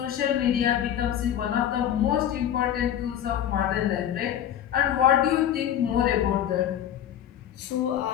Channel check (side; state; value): right; quieter; 10.5 dB